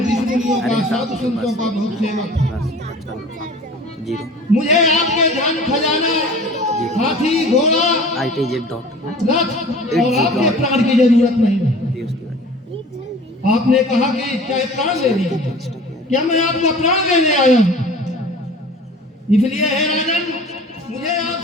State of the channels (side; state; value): both; normal; correlation 0.43